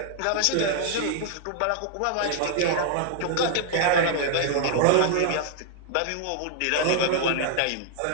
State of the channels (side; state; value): both; different; correlation -0.01